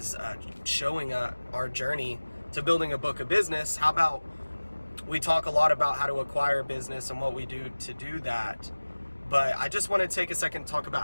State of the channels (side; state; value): both; inverted; correlation -1.00